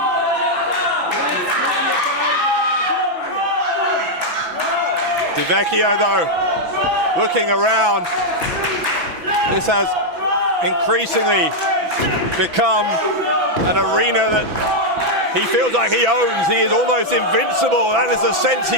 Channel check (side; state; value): left; late; 6.0 ms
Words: Vecchio though, looking around, this has increasingly become an arena that he feels like he owns. He is almost invincible. That is the sense